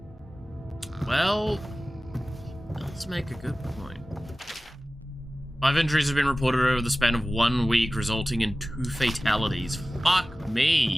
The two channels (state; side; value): normal; both; correlation 0.97